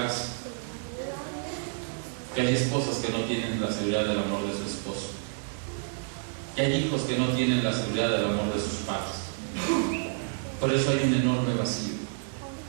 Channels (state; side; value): silent; left; digital silence